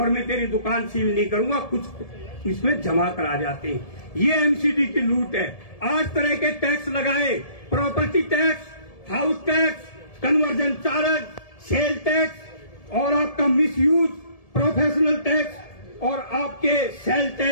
मैं तेरी दुकान सील नहीं करूंगा, कुछ इसमें जमा करा जाते हैं। ये एमसीडी की लूट है। 8 तरह के टैक्स लगाए, property tax, house tax, conversion charge, sale tax और आपका मिसयूज, प्रोफेशनल टैक्स और आपके सेल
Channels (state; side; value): late; right; 1.7 ms